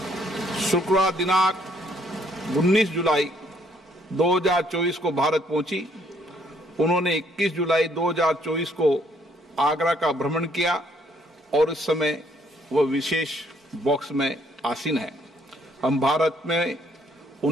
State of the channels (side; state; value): both; normal; correlation 0.67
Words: शुक्रवार दिनांक 19 जुलाई 2024 को भारत पहुंची। उन्होंने 21 जुलाई 2024 को आगरा का भ्रमण किया और इस समय वह विशेष बॉक्स में आसीन है। हम भारत में